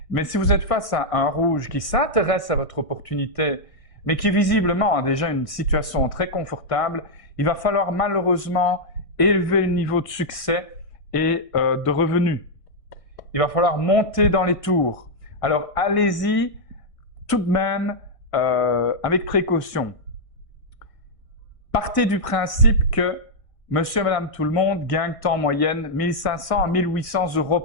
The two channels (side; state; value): right; late; 1.6 ms